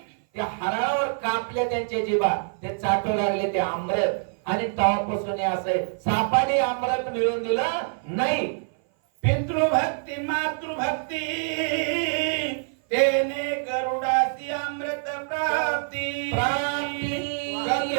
त्या हरणावर कापल्या त्यांच्या जीभा, ते चाटू लागले ते अमृत. आणि तवापासून असं सापाने अमृत मिळवून दिलं नाही. पितृभक्ती मातृभक्ती तेने गरुडाची अमृत प्राप्ती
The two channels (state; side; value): silent; left; 57 dB below the other